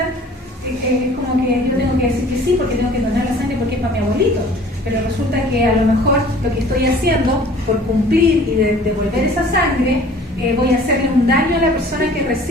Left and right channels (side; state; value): both; normal; correlation 0.50